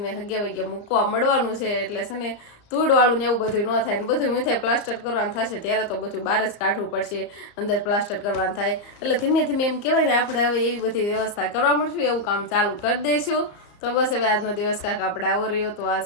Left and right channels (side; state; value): right; late; 34 ms